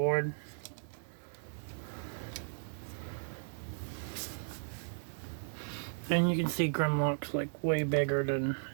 And you can see Grimlock's like way bigger than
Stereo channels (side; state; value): left; silent; digital silence